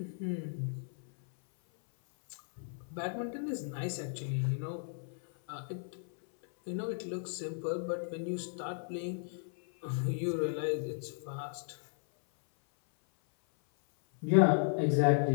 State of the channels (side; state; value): right; silent; 55 dB below the other